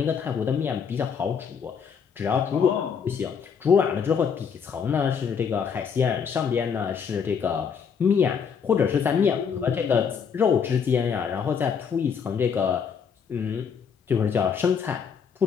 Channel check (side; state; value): right; quieter; 6.7 dB